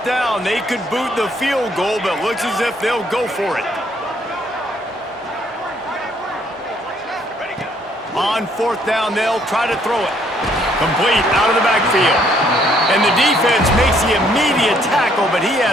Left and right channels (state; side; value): normal; both; correlation 0.66